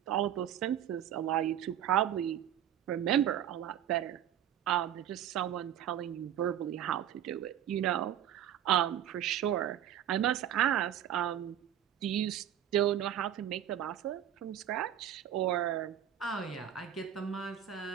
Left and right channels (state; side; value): quieter; left; 10.5 dB